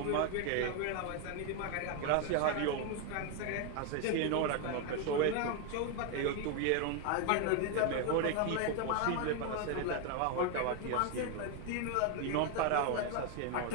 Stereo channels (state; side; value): different; both; correlation 0.01